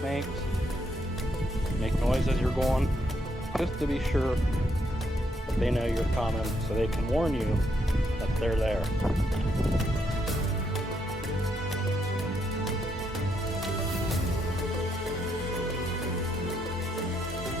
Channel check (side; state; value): both; normal; correlation 0.76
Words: Make noise as you're going, just to be sure that they know you're coming, so they can warn you that they're there.